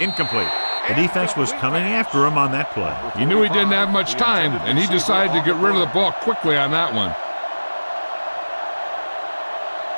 The defense was coming after him on that play. He knew he didn't have much time, and he decided to get rid of the ball quickly on that one.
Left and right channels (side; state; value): both; inverted; correlation -1.00